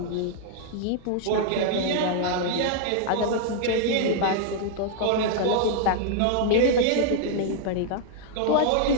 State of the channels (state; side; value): different; both; correlation -0.01